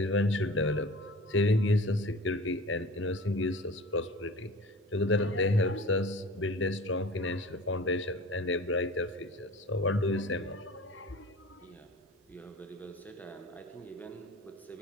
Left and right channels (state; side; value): normal; both; correlation 0.40